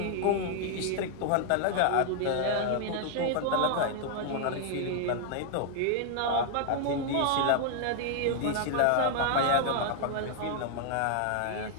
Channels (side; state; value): both; different; correlation 0.00